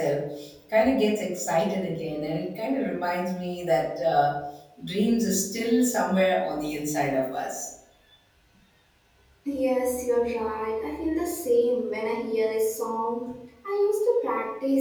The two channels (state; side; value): identical; both; correlation 1.00